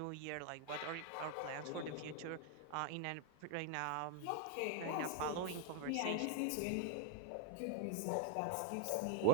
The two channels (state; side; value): different; both; correlation 0.02